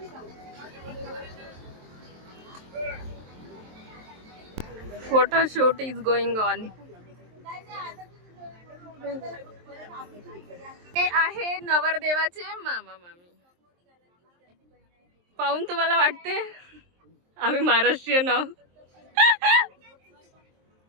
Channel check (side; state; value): left; late; 23 ms